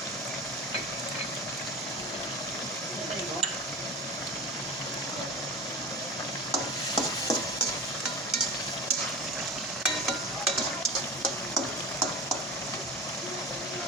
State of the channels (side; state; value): both; normal; correlation 0.32